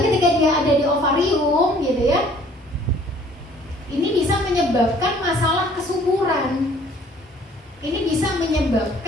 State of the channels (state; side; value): normal; both; correlation 0.56